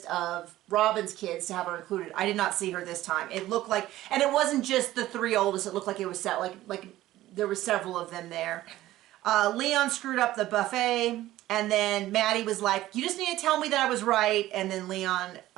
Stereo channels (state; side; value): quieter; left; 15.3 dB